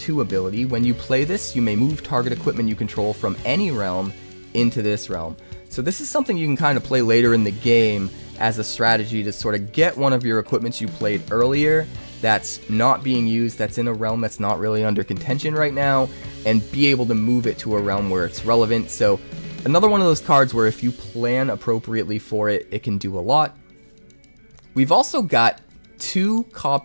ability. When you play this, you may move target equipment you control from any realm into this realm. So this is something you can kind of play later in the game as a strategy to sort of get one of your equipments you played earlier that's not being used, that's in a realm that's not really under contention right now, and be able to move it to a realm where it's relevant. So another one of those cards where if you plan appropriately for it, it can do a lot. We've also got 2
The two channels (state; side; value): inverted; both; correlation -1.00